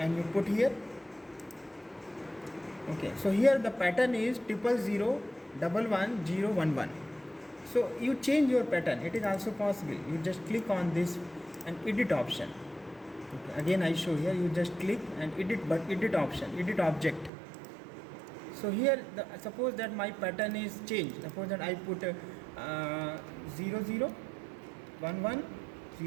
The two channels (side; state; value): left; drops out; at 17.3 s